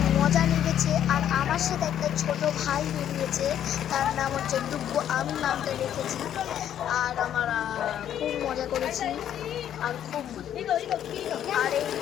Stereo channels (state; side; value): quieter; right; 10.3 dB